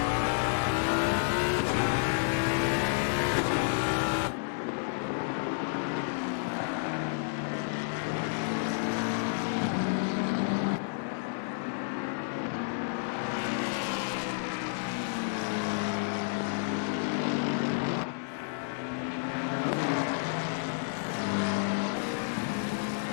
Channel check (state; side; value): silent; right; digital silence